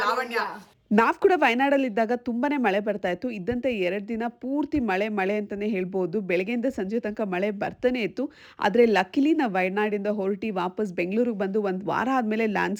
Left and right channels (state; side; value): identical; both; correlation 1.00